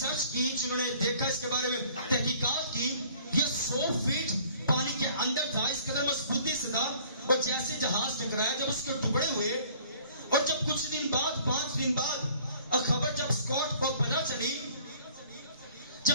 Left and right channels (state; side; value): inverted; both; correlation -0.55